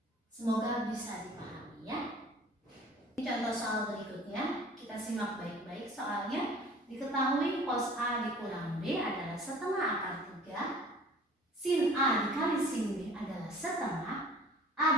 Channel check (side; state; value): both; normal; correlation 0.48